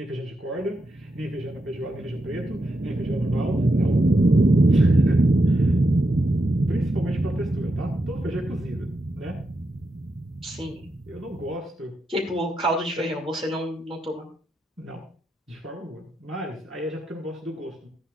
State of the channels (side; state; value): both; normal; correlation 0.85